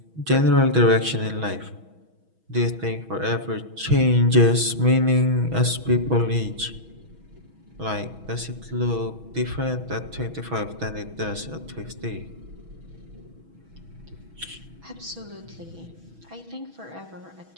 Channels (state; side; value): late; left; 6.2 ms